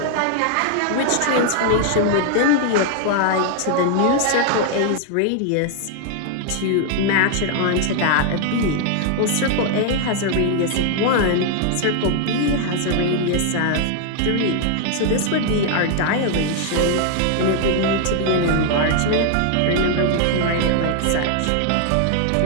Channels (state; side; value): different; both; correlation 0.00